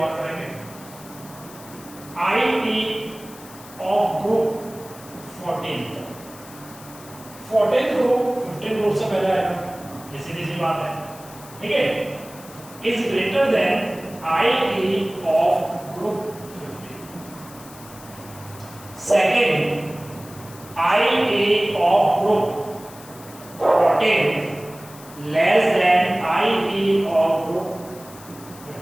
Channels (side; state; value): left; noise; hiss, 19 dB below the sound